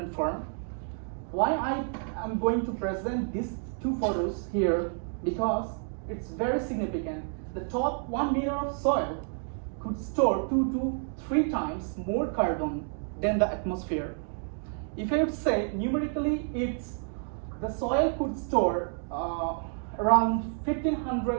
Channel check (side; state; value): left; silent; 58 dB below the other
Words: Farm. Why I am going to present these 2 photos here, because it's very significant. The top 1 meter of soil could store 2 to 3 times more carbon than the atmosphere. If I would say numerically, the soil could store around